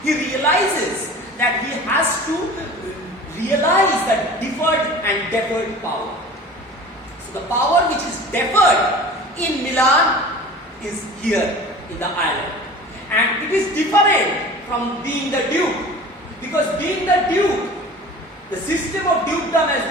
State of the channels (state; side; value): normal; both; correlation 0.40